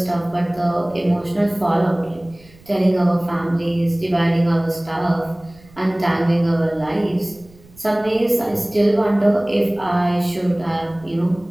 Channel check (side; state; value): right; noise; rumble, 25 dB below the sound